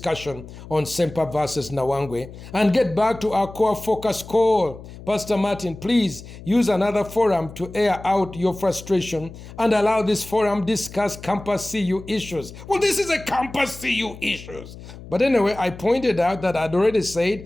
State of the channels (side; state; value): left; noise; hum, 15 dB below the sound